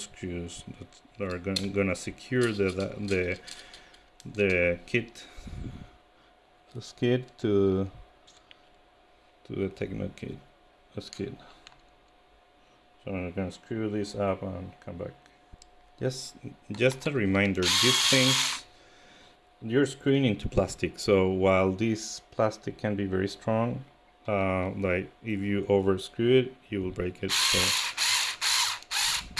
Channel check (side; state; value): both; identical; correlation 1.00